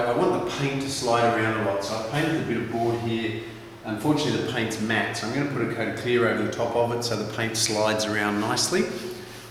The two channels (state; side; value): identical; both; correlation 1.00